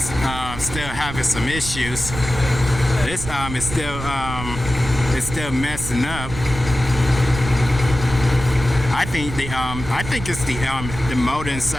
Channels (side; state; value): right; noise; rumble, 9 dB below the sound